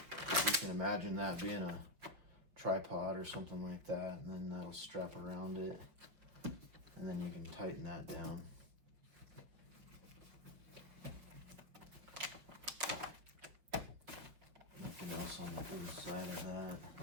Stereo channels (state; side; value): late; left; 5.9 ms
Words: You can imagine that being a tripod or something like that, and then that'll strap around it, and then you can tighten that down. Nothing else on the inside of